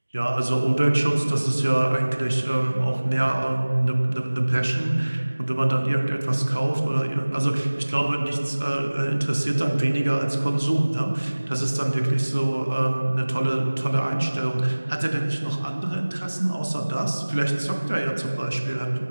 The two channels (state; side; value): inverted; both; correlation -1.00